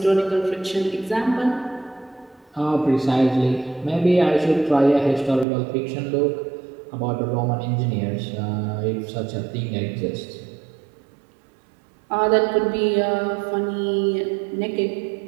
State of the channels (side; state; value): left; drops out; at 5.5 s